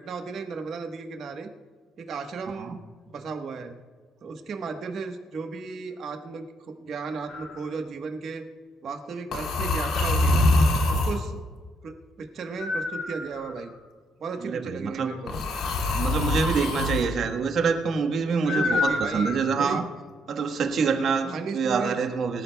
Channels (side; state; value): both; normal; correlation 0.74